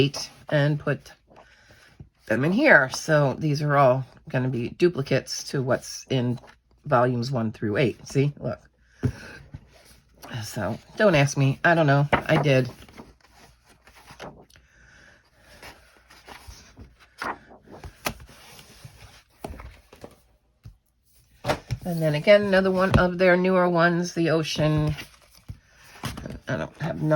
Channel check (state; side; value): identical; both; correlation 1.00